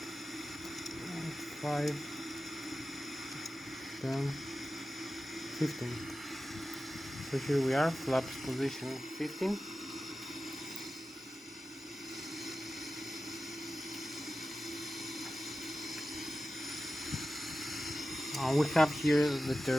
10, 15. So here we are, flaps position 15. We have here the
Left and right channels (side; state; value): both; normal; correlation 0.94